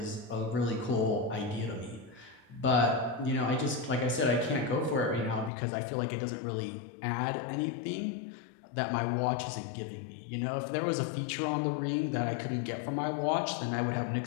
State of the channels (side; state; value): right; drops out; at 5.5 s